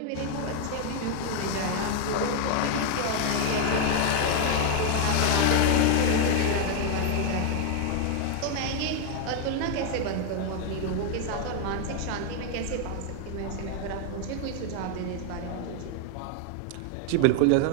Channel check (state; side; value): different; both; correlation 0.00